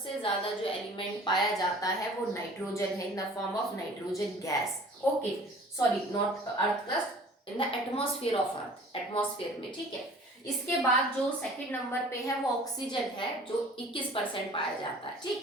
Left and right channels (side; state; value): both; normal; correlation 0.48